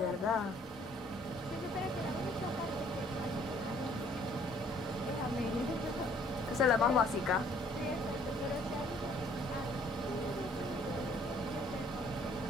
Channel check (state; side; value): normal; both; correlation 0.60